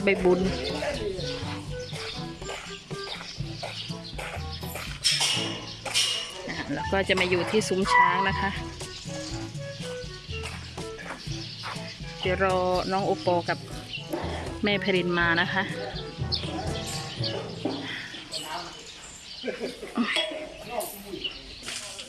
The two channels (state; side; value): identical; both; correlation 1.00